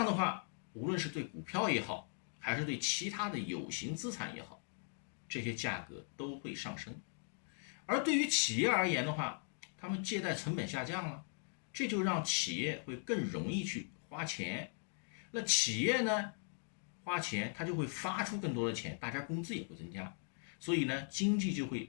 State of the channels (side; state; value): right; silent; 52 dB below the other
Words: 的话，无论是对股票也好，还是对其他的有形资产也好，这些价格都会上升。而对于企业而言的话，他们借贷成本下降了，这就让企业会更容易去花钱。那企业呢花钱，它就会发出更多的钱，大家工资也会增加，所以呢经济就